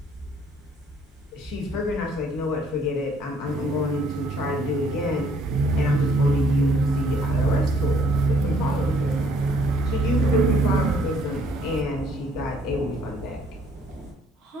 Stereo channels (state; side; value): normal; both; correlation 0.63